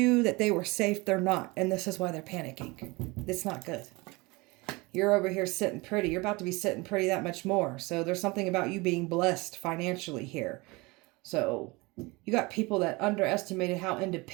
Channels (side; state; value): left; quieter; 24.4 dB